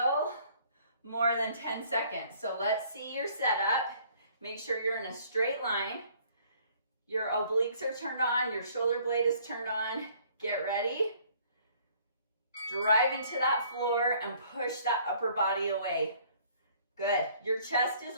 more than 10 seconds. So let's see your setup. Make sure you're in a straight line. Your obliques are turned on. Your shoulder blade is turned on. Get ready. Drive into that floor and push that upper body away. Good. Your chest is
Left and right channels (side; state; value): both; inverted; correlation -0.59